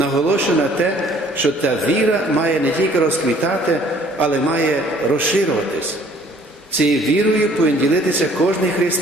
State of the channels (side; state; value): both; normal; correlation 0.57